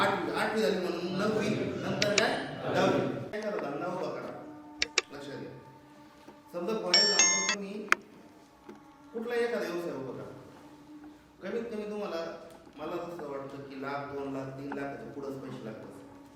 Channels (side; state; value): both; identical; correlation 1.00